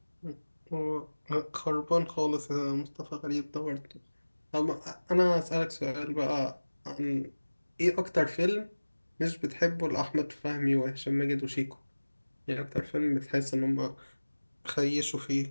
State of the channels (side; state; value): both; inverted; correlation -1.00